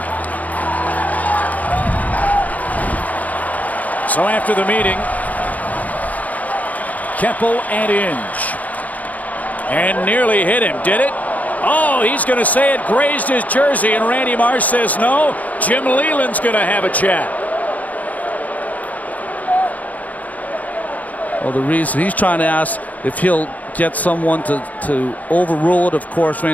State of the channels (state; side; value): late; right; 0.076 ms